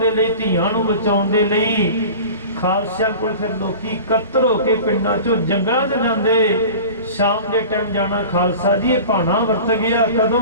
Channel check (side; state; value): both; inverted; correlation -0.37